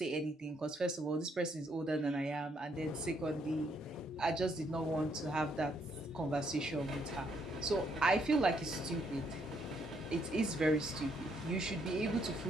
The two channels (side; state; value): both; normal; correlation 0.72